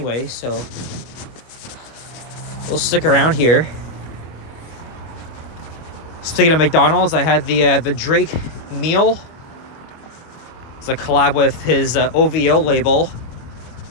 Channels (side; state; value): right; late; 25 ms